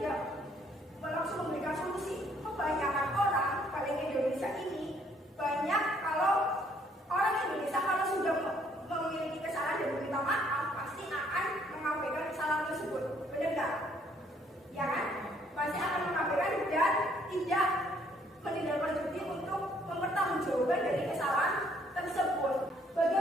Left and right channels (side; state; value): both; normal; correlation 0.65